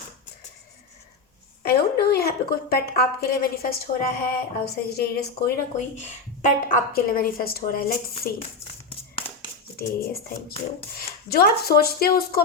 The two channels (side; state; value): right; quieter; 4.1 dB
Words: I don't know यहाँ पे कोई पेट आपके लिए मैनिफेस्ट हो रहा है और सेजिटेरियस कोई ना कोई पेट आपके लिए मैनिफेस्ट हो रहा है। Let's see. Sagittarius, thank you. जो आप सोचते हो उसको